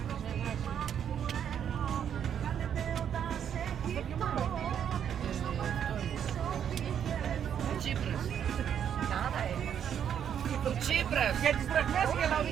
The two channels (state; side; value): quieter; left; 8.8 dB